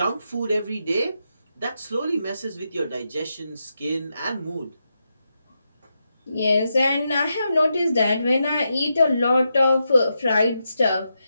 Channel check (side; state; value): both; inverted; correlation -0.85